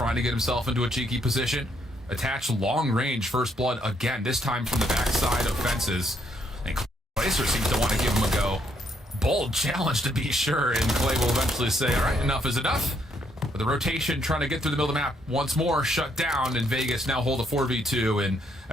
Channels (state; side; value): normal; both; correlation 0.73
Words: to get himself into a cheeky position. Attach long range First Blood again, this time from the backside of fences. And Clayster seems to want to give him a go. Bold challenge to be sure, and Clay will eventually say, all right, enough is enough. But the rotation trying to get through the middle of the map once more shut down, and Vegas now hold a 4v2. And